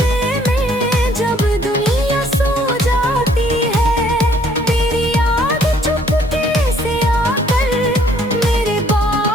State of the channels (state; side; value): normal; both; correlation 0.62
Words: में जब दुनिया सो जाती है, तेरी याद चुपके से आकर मेरे